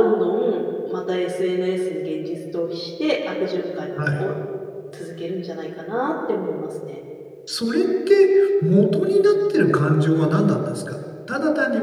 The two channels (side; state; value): both; identical; correlation 1.00